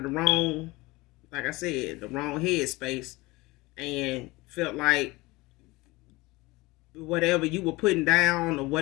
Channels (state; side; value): quieter; right; 21.7 dB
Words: the wrong, like I said, the wrong headspace, and felt like whatever you were putting down, or